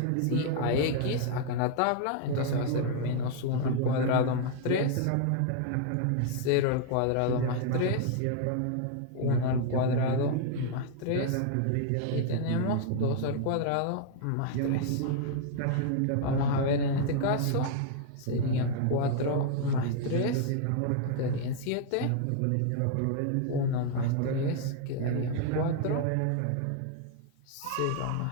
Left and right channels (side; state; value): both; different; correlation 0.00